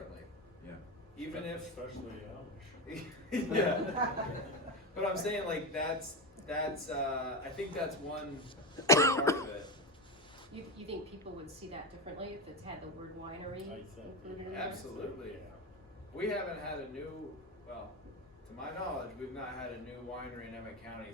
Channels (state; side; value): normal; both; correlation 0.16